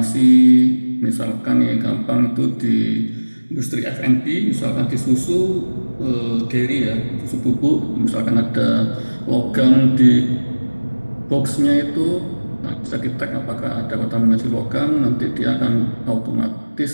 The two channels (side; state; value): both; inverted; correlation -1.00